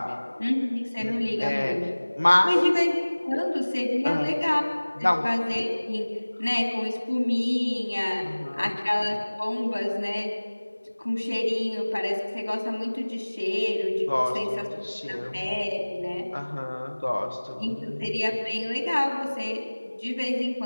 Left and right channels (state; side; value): inverted; both; correlation -1.00